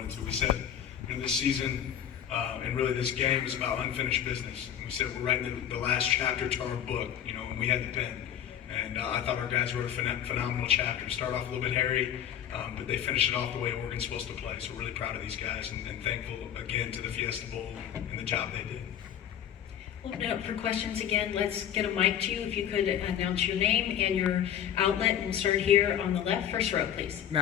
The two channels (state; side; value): quieter; right; 9.9 dB